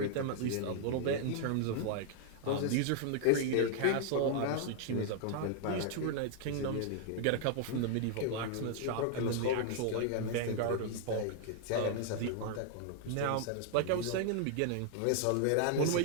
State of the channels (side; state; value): both; different; correlation 0.00